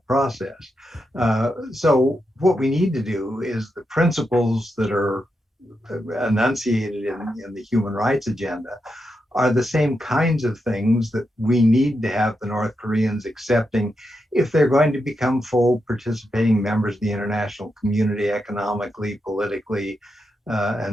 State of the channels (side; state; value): both; normal; correlation 0.85